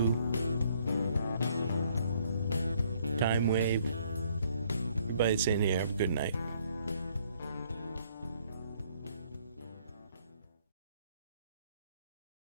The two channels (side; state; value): both; inverted; correlation -0.65